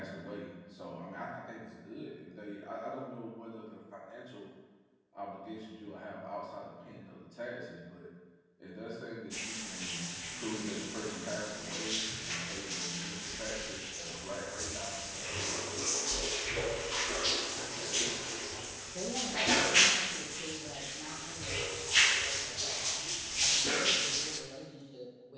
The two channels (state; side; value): identical; both; correlation 1.00